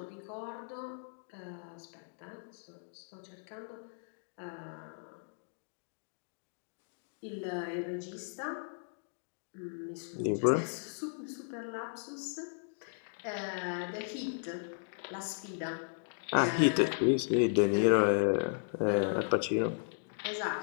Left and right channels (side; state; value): right; silent; digital silence